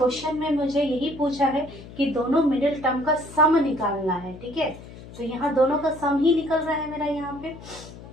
में मुझे यही पूछा है कि दोनों मिडिल टर्म का सम निकालना है। ठीक है, तो यहाँ दोनों का सम ही निकल रहा है मेरा यहाँ पे।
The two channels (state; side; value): noise; left; hum, 16 dB below the sound